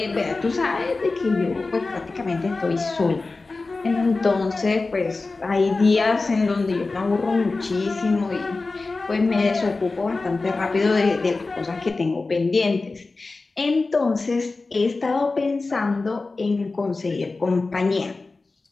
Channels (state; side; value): quieter; right; 3.6 dB